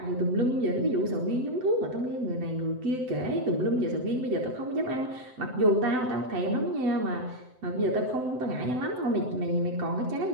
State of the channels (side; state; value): left; late; 7.9 ms